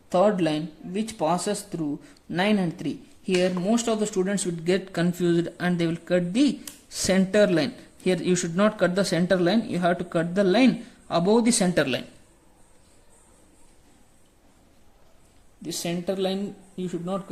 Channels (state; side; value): identical; both; correlation 1.00